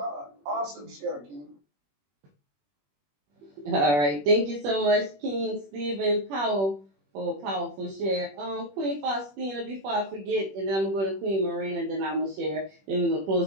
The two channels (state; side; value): late; left; 21 ms